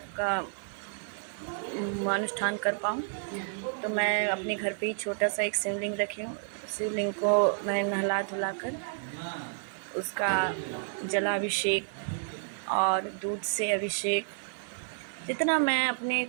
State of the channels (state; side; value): silent; left; 57 dB below the other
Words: का अनुष्ठान कर पाऊँ। तो मैं अपने घर पे ही छोटा सा एक शिवलिंग रखी हूँ। शिवलिंग को मैं नहला धुला कर उसका जलाभिषेक और दूध से अभिषेक जितना मैं अपने